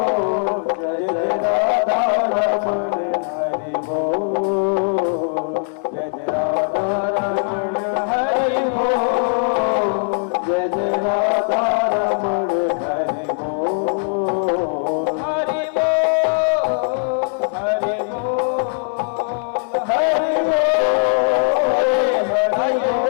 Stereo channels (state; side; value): silent; right; digital silence